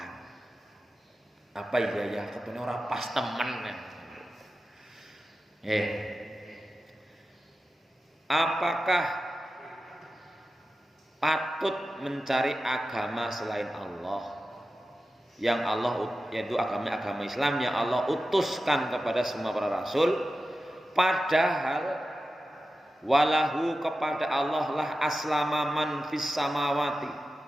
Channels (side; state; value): both; normal; correlation 0.93